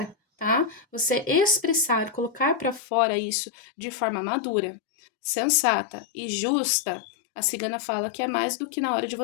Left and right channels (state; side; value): drops out; right; at 2.8 s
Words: tá? Você expressar, colocar para fora isso de forma madura, sensata e justa, a cigana fala que é mais do que na hora de